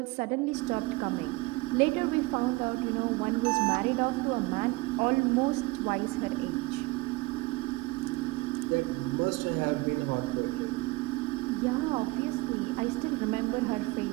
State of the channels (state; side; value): quieter; left; 22.5 dB